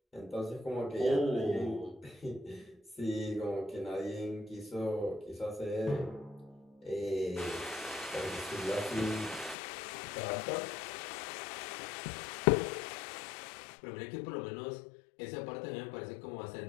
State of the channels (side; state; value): right; drops out; at 9.6 s